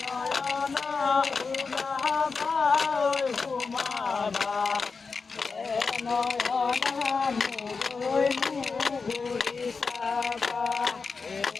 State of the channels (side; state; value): right; quieter; 4.7 dB